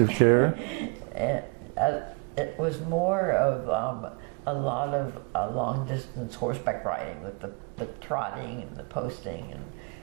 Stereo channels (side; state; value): left; quieter; 32.3 dB